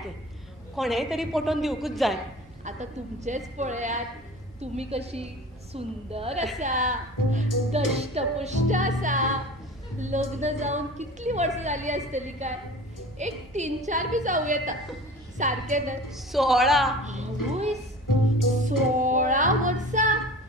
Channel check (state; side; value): normal; both; correlation 0.39